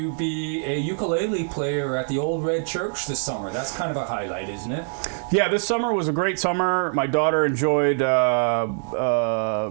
be a ukulele player at the Old Red Church this summer. That's kind of a highlight, isn't it? Yeah, this summer was a great summer. My daughter enjoyed, you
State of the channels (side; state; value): left; silent; digital silence